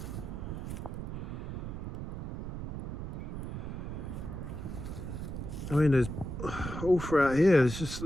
I mean, there's all throughout here, there's just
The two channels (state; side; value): noise; right; rumble, 6 dB below the sound